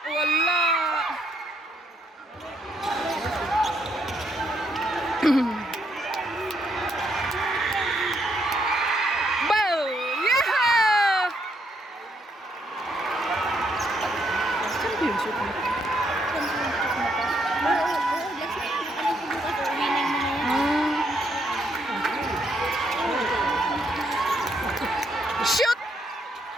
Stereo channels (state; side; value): normal; both; correlation 0.74